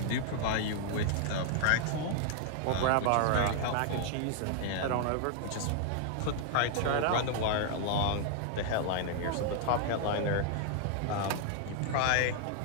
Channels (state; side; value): different; both; correlation 0.00